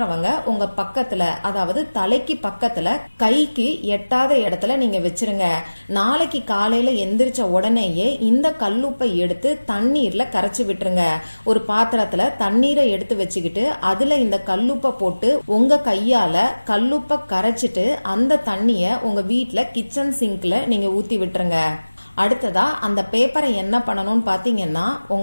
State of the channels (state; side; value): inverted; both; correlation -1.00